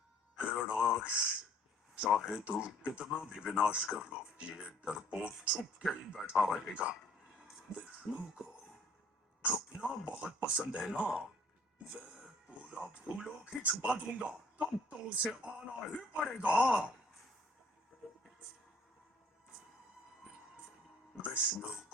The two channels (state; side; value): normal; both; correlation 0.57